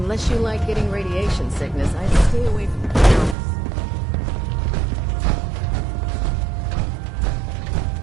much you like getting radiation sickness, I'd stay away from cameras.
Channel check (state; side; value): drops out; left; at 3.4 s